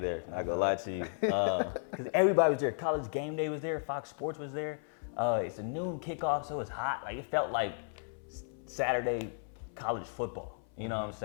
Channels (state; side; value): silent; right; 55 dB below the other